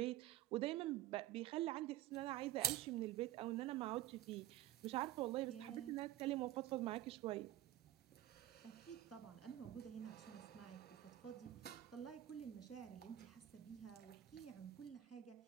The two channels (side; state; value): left; quieter; 13.9 dB